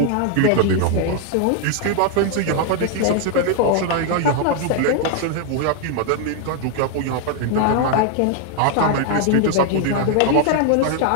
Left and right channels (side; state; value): both; different; correlation 0.00